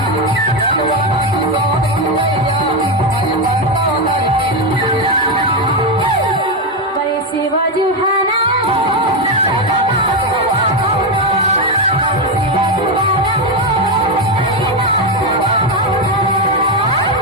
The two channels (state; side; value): normal; both; correlation 0.08